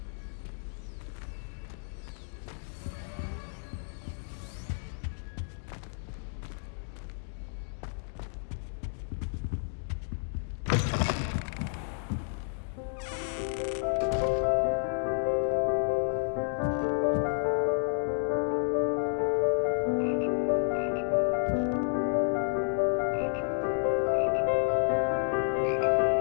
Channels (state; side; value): silent; right; digital silence